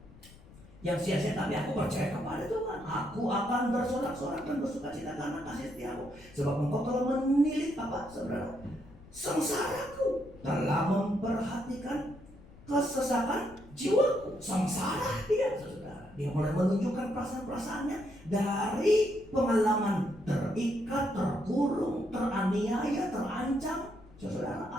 yang sia-sia, tapi aku percaya kepada Tuhan. Aku akan bersorak-sorak dan bersukacita karena kasih setiamu. Sebab engkau telah menilik apa, saudara? Sengsaraku, telah memperhatikan kesesakan jiwaku. Sengsara dia, saudara. Dia mulai menunjukkan perasaan-perasaannya dari pengalaman terikat, terkurung, teraniaya, terancam. Saudara,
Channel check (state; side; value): noise; left; rumble, 21 dB below the sound